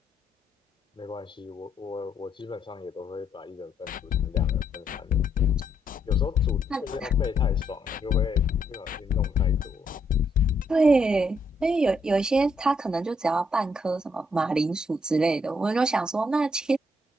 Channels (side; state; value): both; normal; correlation 0.75